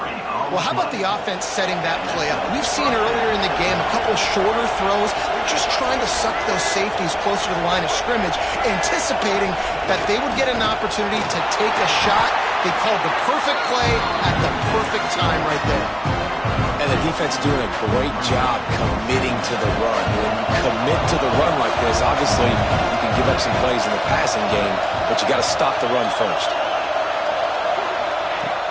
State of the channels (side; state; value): both; identical; correlation 1.00